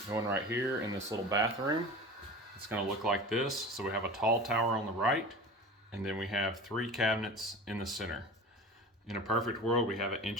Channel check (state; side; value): normal; both; correlation 0.35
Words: going right here in this little bathroom. It's going to look like this. So we have a tall tower on the right, and then we have 3 cabinets in the center. In a perfect world, we have an